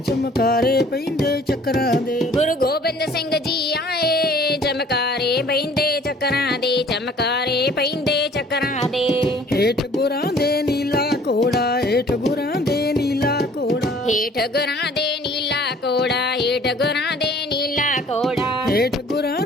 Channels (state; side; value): normal; both; correlation 0.53